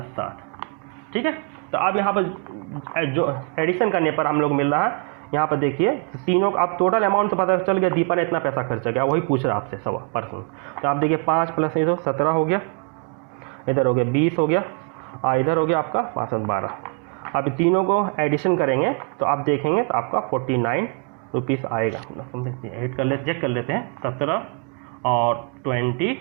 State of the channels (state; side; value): quieter; left; 35.5 dB